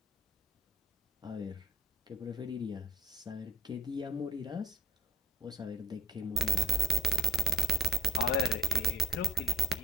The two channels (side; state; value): both; normal; correlation 0.60